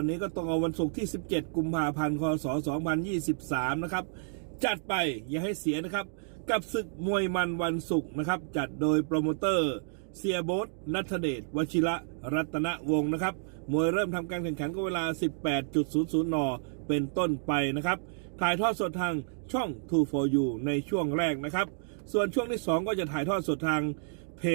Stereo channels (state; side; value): silent; left; digital silence